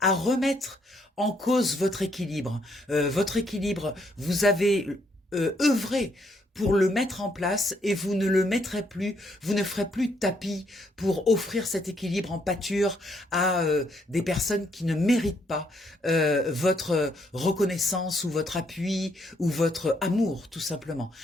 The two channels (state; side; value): normal; both; correlation 0.72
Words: à remettre en cause votre équilibre. Vous avez œuvré pour le mettre en place et vous ne le mettrez plus, vous ne ferez plus de tapis pour offrir cet équilibre en pâture à des personnes qui ne méritent pas votre reconnaissance ou votre appui ou votre amour, tout simplement.